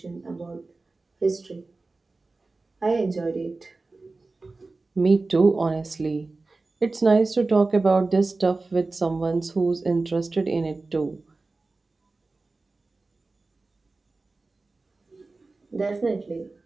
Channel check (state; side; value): quieter; left; 3.5 dB